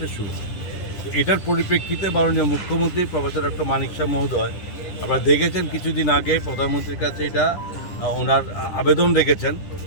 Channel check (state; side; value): late; right; 10 ms